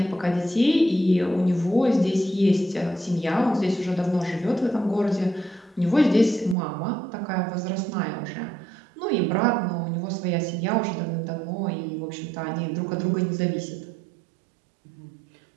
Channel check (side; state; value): left; drops out; at 6.6 s